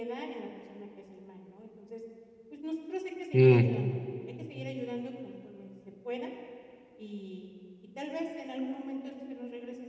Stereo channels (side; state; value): both; identical; correlation 1.00